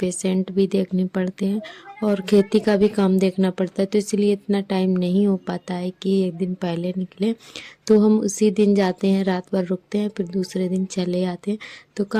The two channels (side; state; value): both; identical; correlation 1.00